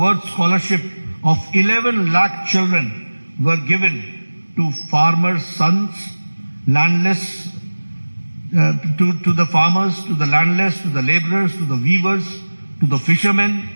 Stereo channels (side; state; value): both; inverted; correlation -1.00